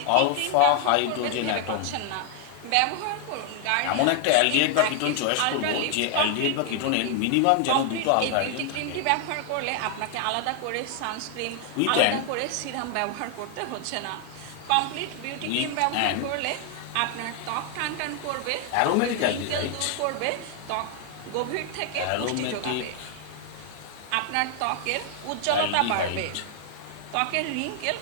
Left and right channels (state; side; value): different; both; correlation 0.00